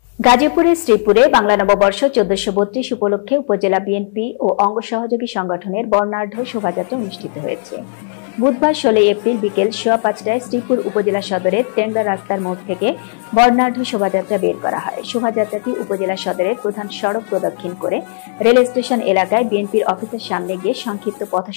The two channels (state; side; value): silent; right; digital silence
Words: গাজীপুরের শ্রীপুরে বাংলা নববর্ষ 1432 উপলক্ষে উপজেলা বিএনপি ও অঙ্গ সহযোগী সংগঠনের বর্ণাঢ্য শোভাযাত্রা অনুষ্ঠিত হয়েছে। বুধবার 16 এপ্রিল বিকেল 5:15টায় শ্রীপুর উপজেলা সদরের টেংরা রাস্তার মোড় থেকে বর্ণাঢ্য শোভাযাত্রা বের করা হয়। শোভাযাত্রাটি উপজেলা সদরের প্রধান সড়ক প্রদক্ষিণ করে রেল স্টেশন এলাকায় বিএনপির অফিসের সামনে গিয়ে সংক্ষিপ্ত